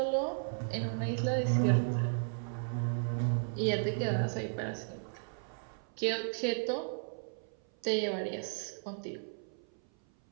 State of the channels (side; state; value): left; silent; 55 dB below the other